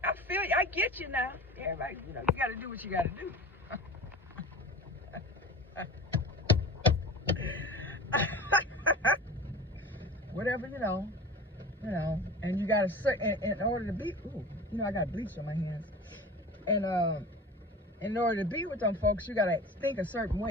feel, I get you now. Everybody, you got to do what you got to do. Whatever, and you got to, in order to be, I got bleach on my hands. And in order to be with them folks, you got to think a certain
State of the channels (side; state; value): both; normal; correlation 0.36